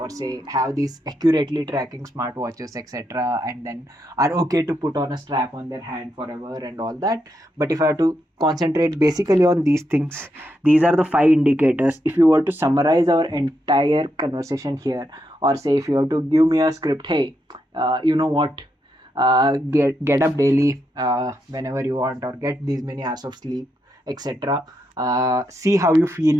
say have these accurately tracking smartwatches, etc., and then are okay to put on a strap on their hand forever and all that. But if I have to concentrate basically on these things, these are the 5 indicators. If you were to summarize our entire conversation here, or say if you have to give me a script, hey, you know what, get up daily whenever you want, or get these many hours of sleep, etc. See how you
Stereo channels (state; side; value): normal; both; correlation 0.82